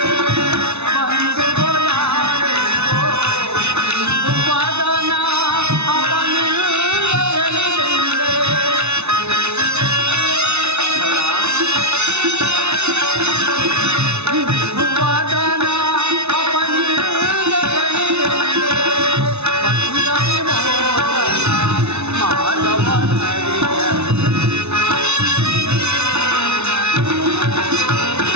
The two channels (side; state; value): left; late; 0.81 ms